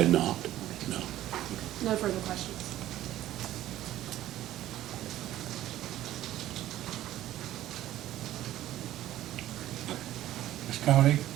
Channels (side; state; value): left; quieter; 13.8 dB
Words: not, no. No further questions. Ms. Coney,